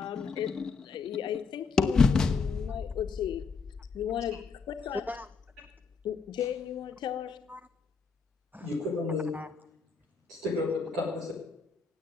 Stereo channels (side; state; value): right; quieter; 4.9 dB